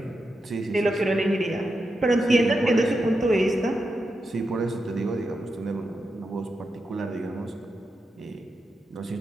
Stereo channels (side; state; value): both; normal; correlation 0.87